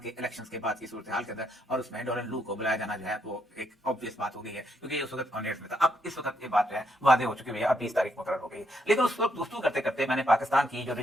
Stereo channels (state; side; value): normal; both; correlation 0.76